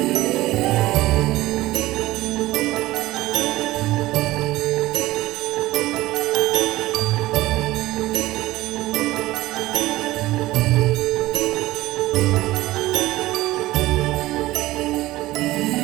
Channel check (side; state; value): left; quieter; 17.5 dB